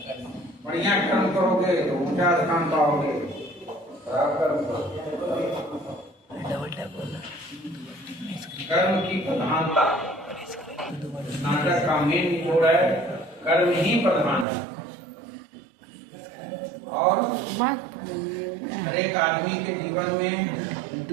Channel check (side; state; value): left; drops out; at 14.5 s